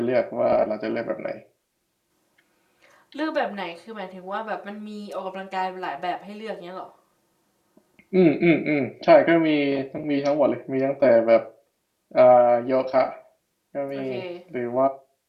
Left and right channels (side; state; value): both; identical; correlation 1.00